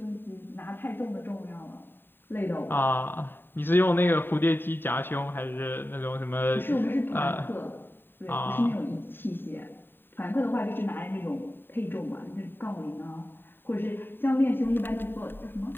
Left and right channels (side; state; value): right; late; 0.097 ms